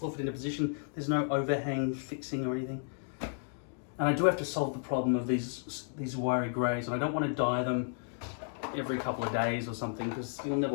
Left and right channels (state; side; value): silent; right; 56 dB below the other